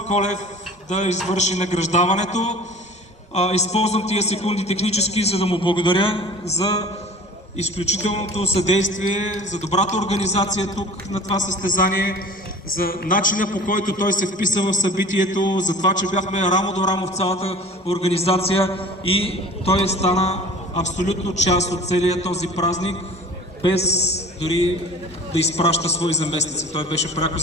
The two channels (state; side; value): normal; both; correlation 0.43